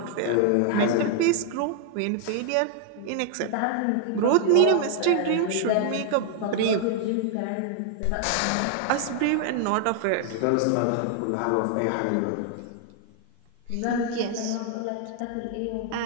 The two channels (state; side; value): different; both; correlation 0.00